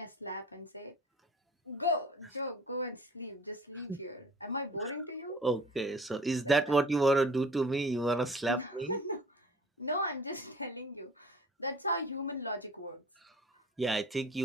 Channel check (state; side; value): normal; both; correlation 0.46